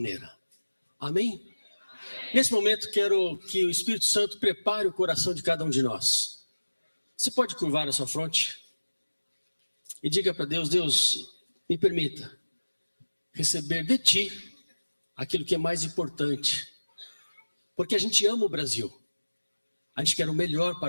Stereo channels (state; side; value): inverted; both; correlation -1.00